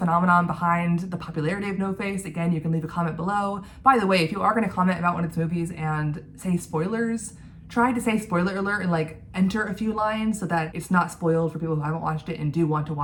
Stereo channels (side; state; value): both; identical; correlation 1.00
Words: behind the popularity of No Face, again, you can leave a comment below. By the way, if you are going to comment about one of its movies and say spoilers, try to say spoiler alert and like enter a few lines so that it's not spoiled for people who haven't watched it and do want to